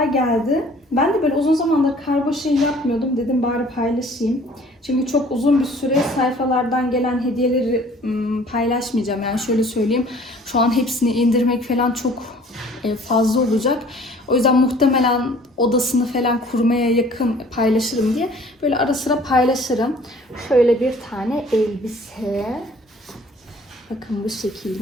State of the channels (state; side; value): normal; both; correlation 0.53